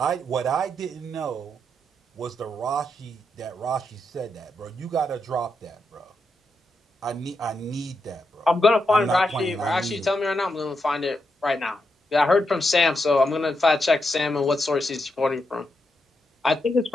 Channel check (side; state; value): both; normal; correlation 0.83